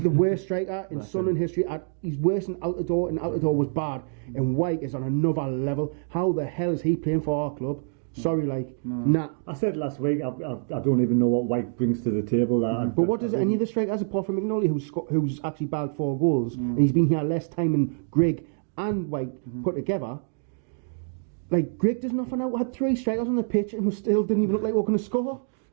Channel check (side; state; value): left; silent; digital silence